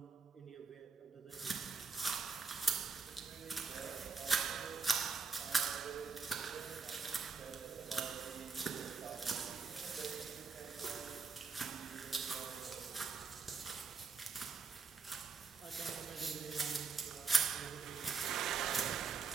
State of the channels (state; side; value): quieter; left; 4.9 dB